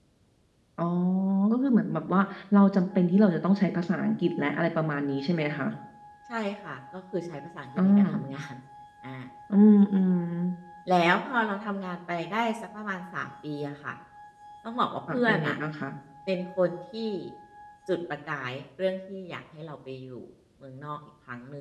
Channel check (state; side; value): identical; both; correlation 1.00